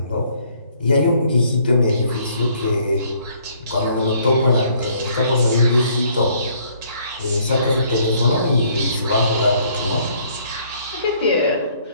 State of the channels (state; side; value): inverted; both; correlation -0.63